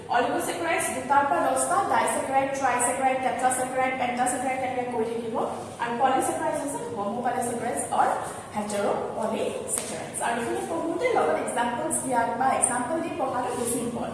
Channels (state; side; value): identical; both; correlation 1.00